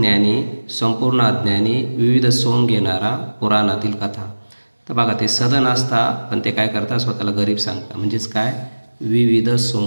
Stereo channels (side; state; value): both; inverted; correlation -1.00